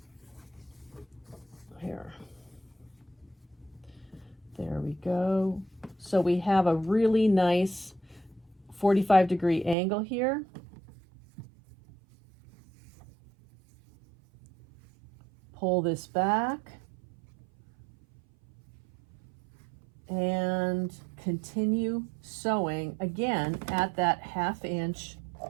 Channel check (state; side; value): drops out; left; at 9.8 s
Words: Here. There we go. So we have a really nice 45-degree angle here. Pull this back and continue sewing again at that 1/2 inch